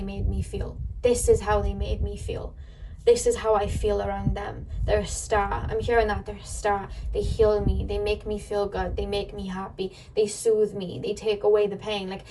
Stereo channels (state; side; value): identical; both; correlation 1.00